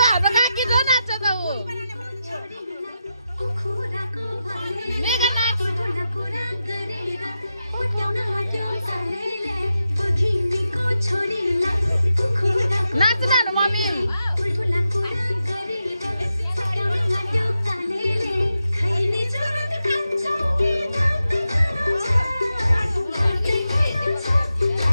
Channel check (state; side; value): inverted; both; correlation -0.88